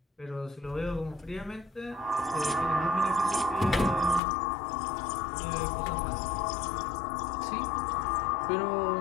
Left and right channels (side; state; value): right; drops out; at 4.2 s